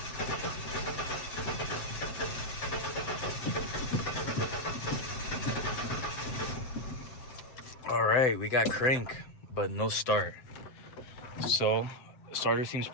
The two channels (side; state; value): right; late; 7.7 ms